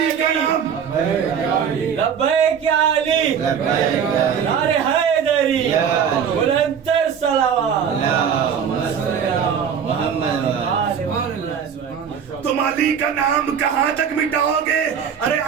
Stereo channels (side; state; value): left; quieter; 7.5 dB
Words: کا نام، لبیک یا علی، نعرے حیدری، بلند تر صلوات۔ تم علی کا نام کہاں تک مٹاؤ گے؟ ارے